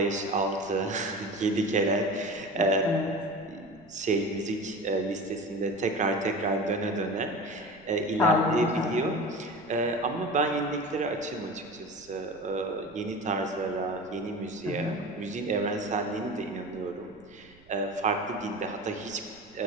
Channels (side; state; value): right; noise; rumble, 26 dB below the sound